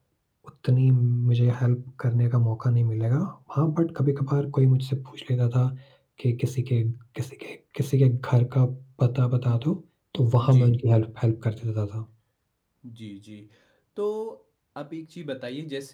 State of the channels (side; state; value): both; identical; correlation 1.00